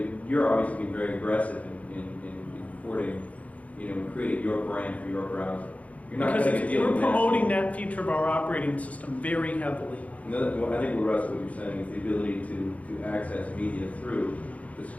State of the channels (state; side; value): late; right; 0.068 ms